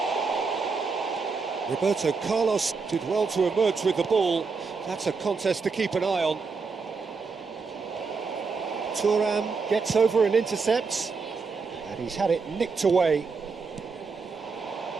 Roberto Carlos did well to emerge with the ball. That's a contest to keep an eye on. Thuram gets over and intercepts, and he's had it nicked away.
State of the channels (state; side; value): quieter; left; 4.8 dB